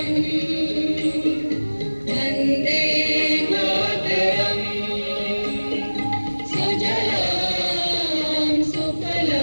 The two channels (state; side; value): inverted; both; correlation -1.00